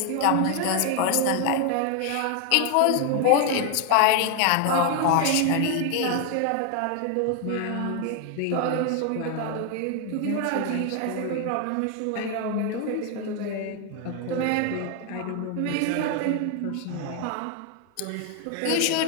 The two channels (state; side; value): different; both; correlation 0.00